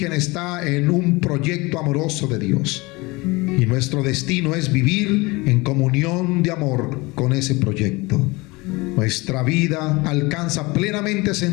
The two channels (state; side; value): quieter; right; 23.9 dB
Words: está en un proyecto amoroso de Dios, y nuestro destino es vivir en comunión de amor con ese proyecto. Nuestra vida alcanza plenamente